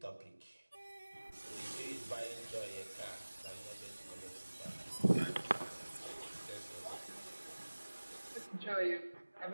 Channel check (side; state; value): both; inverted; correlation -1.00